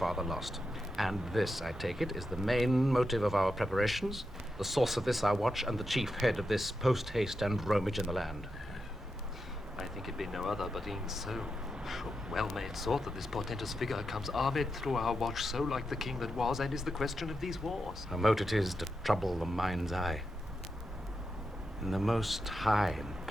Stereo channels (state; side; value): normal; both; correlation 0.87